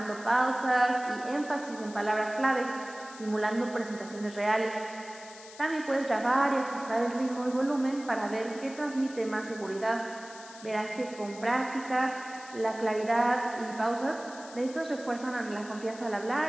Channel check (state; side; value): noise; left; hiss, 18 dB below the sound